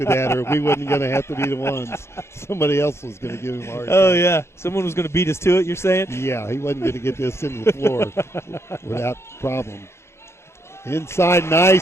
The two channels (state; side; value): late; right; 0.13 ms